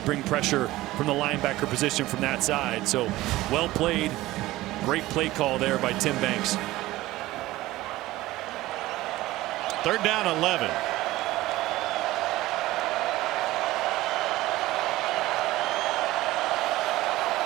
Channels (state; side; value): quieter; left; 17.4 dB